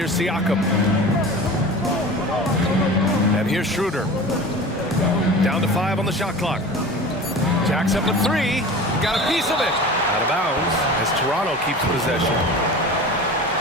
Siakam. And here's Schroeder. Down to 5 on the shot clock. Jacks up at 3. Got a piece of it. Out of bounds as Toronto keeps possession.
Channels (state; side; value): normal; both; correlation 0.36